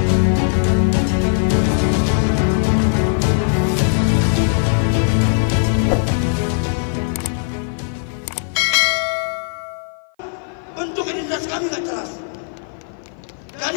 Bentuk identitas kami nggak jelas.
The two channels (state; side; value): silent; right; 55 dB below the other